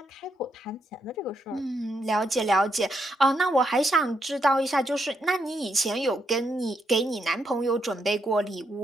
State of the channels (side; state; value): both; normal; correlation 0.78